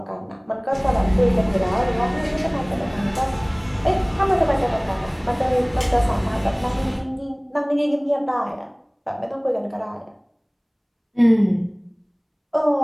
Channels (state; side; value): identical; both; correlation 1.00